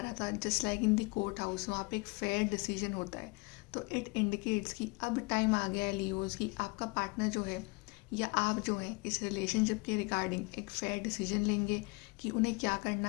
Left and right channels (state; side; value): quieter; right; 27.2 dB